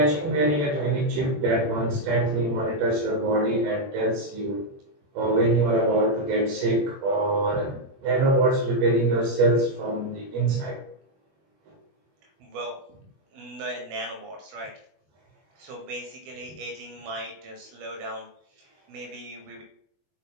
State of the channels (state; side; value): late; left; 21 ms